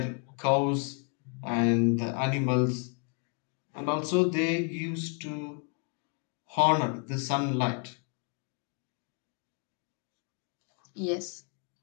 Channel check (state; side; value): quieter; right; 39.3 dB